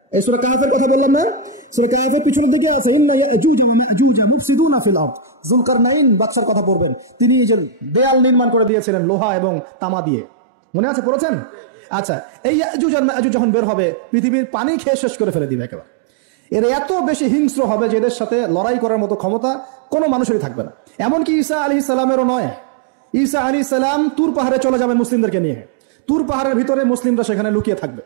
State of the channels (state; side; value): drops out; left; at 8.7 s